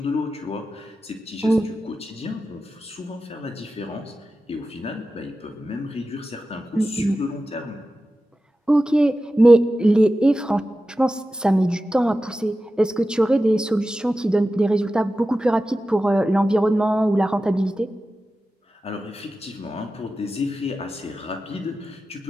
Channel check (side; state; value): both; normal; correlation 0.93